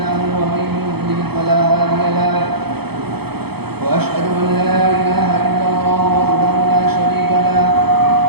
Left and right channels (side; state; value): left; late; 0.97 ms